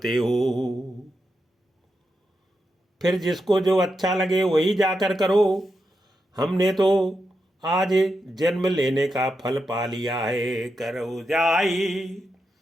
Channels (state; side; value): normal; both; correlation 0.86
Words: हो? फिर जिसको जो अच्छा लगे वही जाकर करो। हमने तो आज जन्म लेने का फल पा लिया है। करो जाई